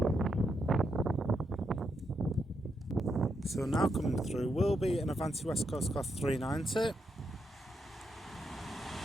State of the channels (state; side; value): normal; both; correlation 0.81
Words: So now coming through will be an Avanti West Coast Class 390.